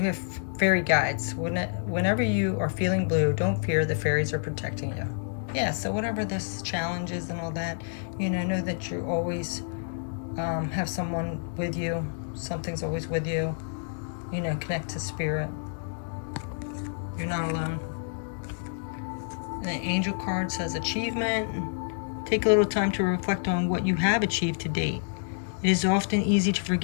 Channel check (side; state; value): right; silent; digital silence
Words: have fairy guides. Whenever you are feeling blue, don't fear, the fairies are protecting you. Yeah, so whatever this challenge is and all that, know that you always have someone with you. Something's always with you. Connect to spirit. You're not alone. And the angel card says achievement. Take a little time to reflect on what you have achieved to date. It is often easy to